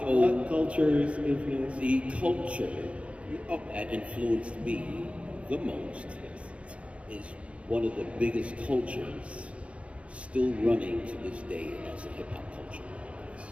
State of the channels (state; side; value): late; left; 0.062 ms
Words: cultures influence? The culture that influenced me the most is one of the biggest cultures still running to this day, and that's the hip hop culture.